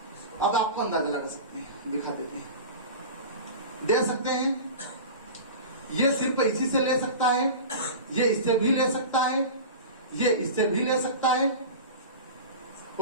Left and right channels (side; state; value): both; inverted; correlation -0.32